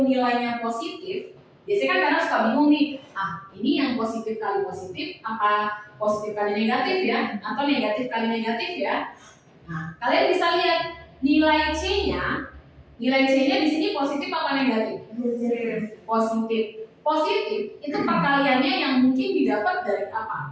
nilainya positif, biasanya kan kadang suka bingung nih, ini yang positif kali positif, apa positif kali negatif ya, atau negatif kali negatif ya. Nah, kalian bisa lihat nilai C-nya di sini positif apa negatif? Positif. Positif itu perkaliannya yang mungkin didapat dari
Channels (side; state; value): both; identical; correlation 1.00